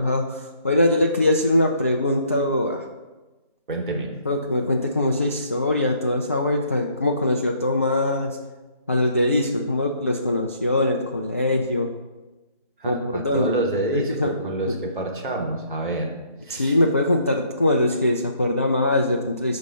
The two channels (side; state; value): both; inverted; correlation -0.64